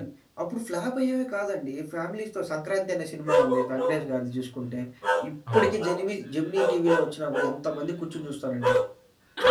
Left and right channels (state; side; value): identical; both; correlation 1.00